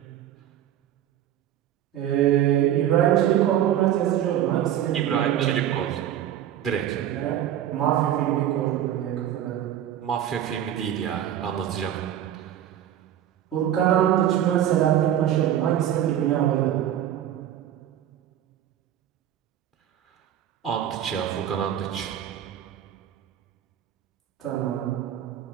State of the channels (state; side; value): quieter; left; 11.1 dB